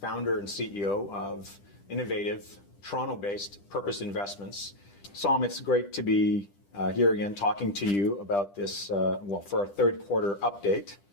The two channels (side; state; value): right; late; 10 ms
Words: founder and CEO of innovative Toronto-based Purpose Investments. Som, it's great to be here again talking to you about this, for our third quarter update